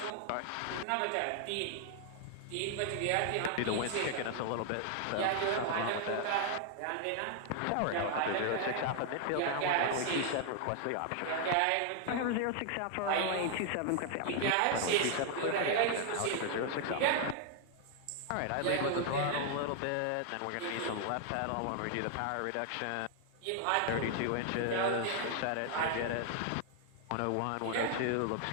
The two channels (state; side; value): different; both; correlation 0.00